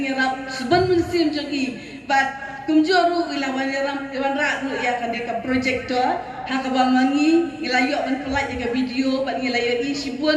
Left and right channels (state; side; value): identical; both; correlation 1.00